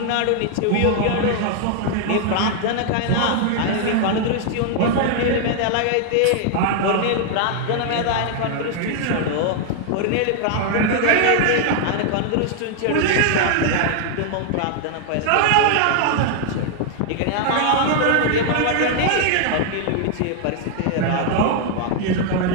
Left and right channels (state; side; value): different; both; correlation 0.00